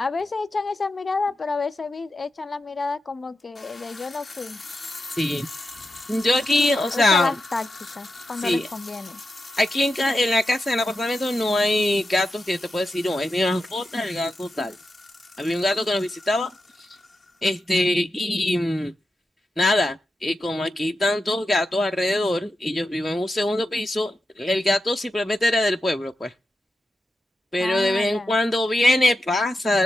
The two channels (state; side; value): normal; both; correlation 0.89